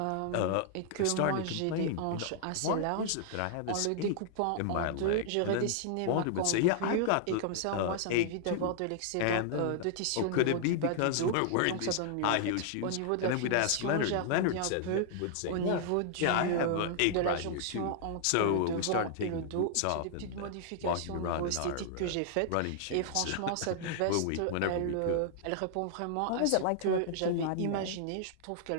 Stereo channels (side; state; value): both; different; correlation -0.01